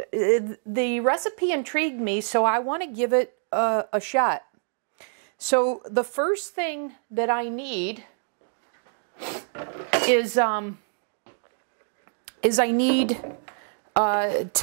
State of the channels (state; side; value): silent; left; digital silence